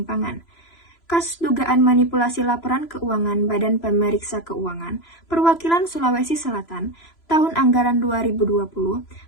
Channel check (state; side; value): late; right; 3.0 ms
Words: Kasus dugaan manipulasi laporan keuangan Badan Pemeriksa Keuangan Perwakilan Sulawesi Selatan tahun anggaran 2020